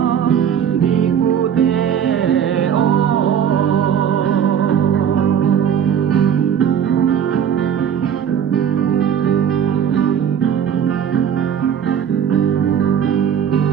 đi cu tê ô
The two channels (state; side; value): quieter; left; 8.4 dB